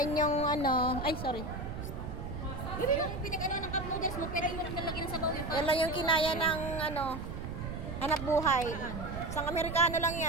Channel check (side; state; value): right; noise; rumble, 7 dB below the sound